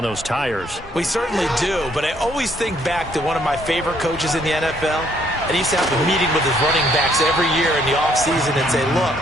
those tires. We certainly do, but I always think back to one of my favorite coaches in the NFL. And he used to have a meeting with his running backs every year in the offseason and say, look,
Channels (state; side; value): normal; both; correlation 0.67